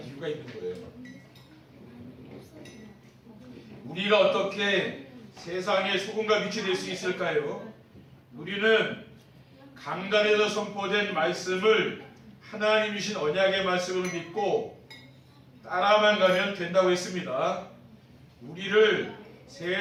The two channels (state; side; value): identical; both; correlation 1.00